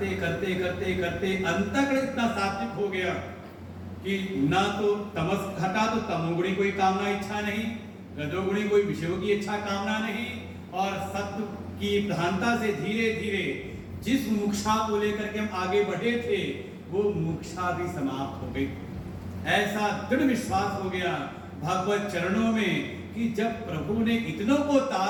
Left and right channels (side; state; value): both; identical; correlation 1.00